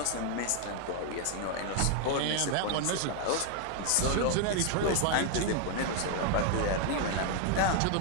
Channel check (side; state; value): both; different; correlation 0.00